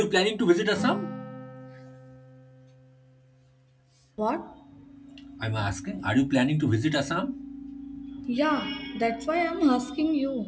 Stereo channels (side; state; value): both; identical; correlation 1.00